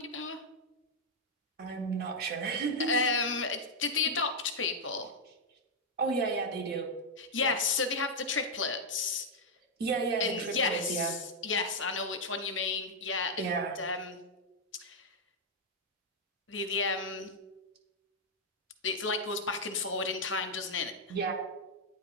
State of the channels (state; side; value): normal; both; correlation -0.03